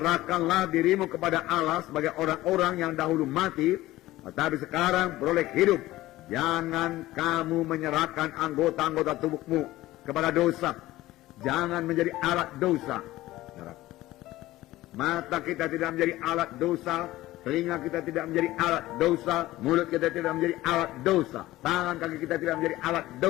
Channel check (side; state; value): right; quieter; 16.8 dB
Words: dirimu kepada Allah sebagai orang-orang yang dahulu mati, tetapi sekarang beroleh hidup. Jangan kamu menyerahkan anggota-anggota tubuhmu kepada dosa. Jangan menjadi alat dosa. Mata kita tidak menjadi alat dosa. Telinga kita tidak menjadi alat dosa. Mulut kita tidak menjadi alat dosa. Tangan kaki kita tidak menjadi alat